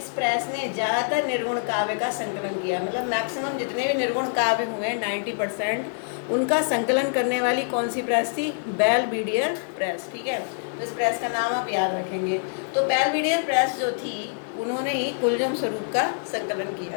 प्रेस ने ज़्यादातर निर्गुण काव्य का संकलन किया, मतलब मैक्सिमम जितने भी निर्गुण काव्य हुए 90% उनका संकलन करने वाली कौन सी प्रेस थी? बेलविडियर प्रेस, ठीक है। तो इस प्रेस का नाम आप याद रखेंगे। तो बेलविडियर प्रेस जो थी उन्होंने ही कुलजम स्वरूप का संकलन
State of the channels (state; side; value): silent; right; digital silence